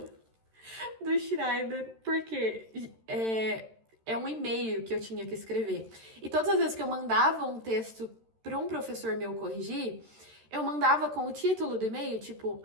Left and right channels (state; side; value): late; left; 13 ms